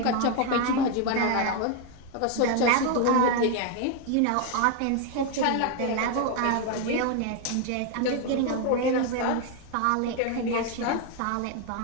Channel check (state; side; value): different; both; correlation 0.01